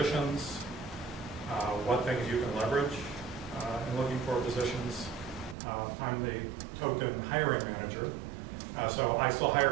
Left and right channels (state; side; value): drops out; left; at 5.6 s